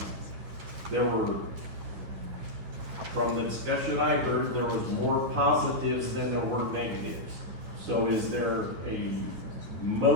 there were, from the discussion I heard, there was more positives than there were negatives. So is there a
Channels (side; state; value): left; late; 9.9 ms